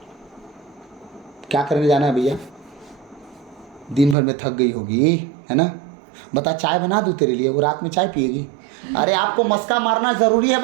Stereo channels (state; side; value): drops out; left; at 4.2 s